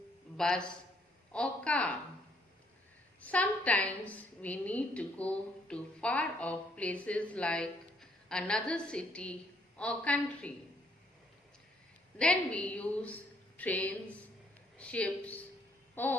bus or car. Sometimes we need to go to far off places like another city or country. Then we use trains, ships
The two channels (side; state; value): both; normal; correlation 0.68